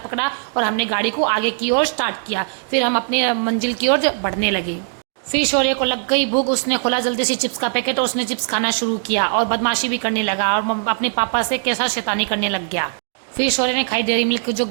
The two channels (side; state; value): left; silent; digital silence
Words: और हमने गाड़ी को आगे की ओर स्टार्ट किया। फिर हम अपनी मंजिल की ओर बढ़ने लगे। फिर शौर्य को लग गई भूख, उसने खोला जल्दी से चिप्स का पैकेट और उसने चिप्स खाना शुरू किया और बदमाशी भी करने लगा और अपने पापा से कैसा शैतानी करने लग गया। फिर शौर्य ने खाई डेयरी मिल्क, जो